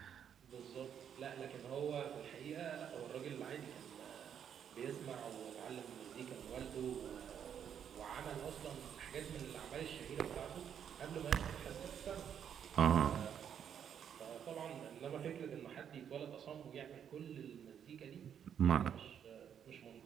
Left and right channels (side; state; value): left; quieter; 8.5 dB